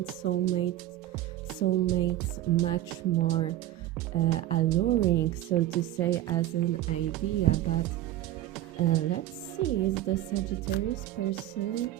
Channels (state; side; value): quieter; left; 13.8 dB